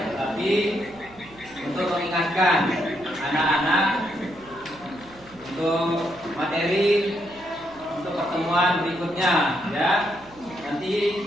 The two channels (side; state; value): right; noise; hum, 25 dB below the sound